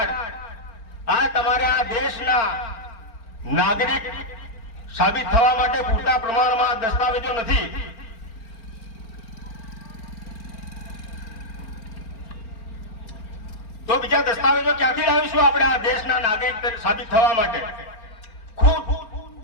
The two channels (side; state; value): right; late; 4.4 ms